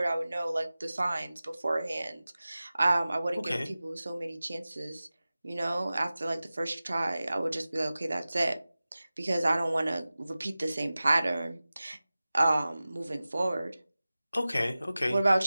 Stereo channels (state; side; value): inverted; both; correlation -0.96